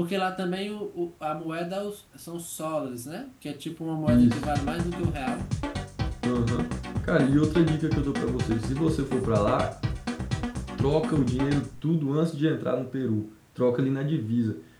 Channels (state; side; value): identical; both; correlation 1.00